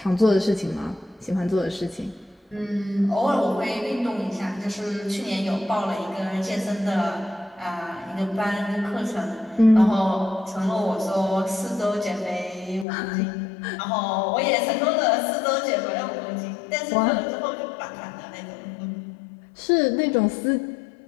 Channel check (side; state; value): right; drops out; at 12.9 s